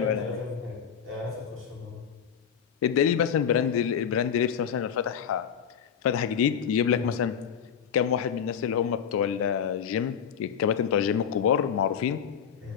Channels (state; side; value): quieter; right; 7.9 dB